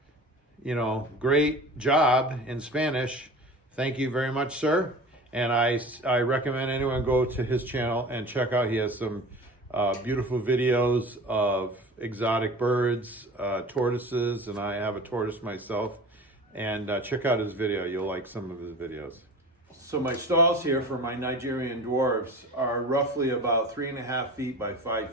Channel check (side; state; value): both; normal; correlation 0.37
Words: you know, great job in Spanish. Thank you very much, sir. And I recommend anyone go to his channel and check out. He has some beautiful videos of exotic birds, tortoises, and I have a tortoise myself. And check out his video. You'll like some of his videos. So my stalls here for my Nigerian dwarves are roughly about 3.5 feet by 5